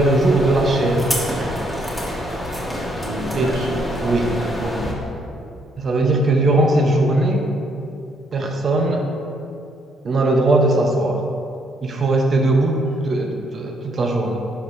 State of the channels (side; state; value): both; normal; correlation 0.71